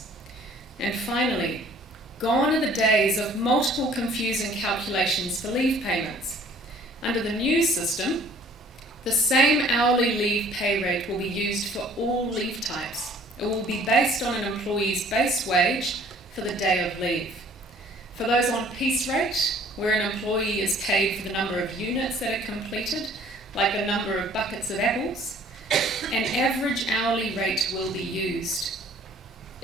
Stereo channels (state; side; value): normal; both; correlation 0.55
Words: And finally, gone are the days of multiple confusing calculations for leave payments. Under the new system, the same hourly leave pay rate will be used for all leave types. It will be based on an employee's base wage for the day of leave. For those on piece rate, where an employee is paid for the number of units that are completed, like the number of buckets of apples, an average hourly rate will be used.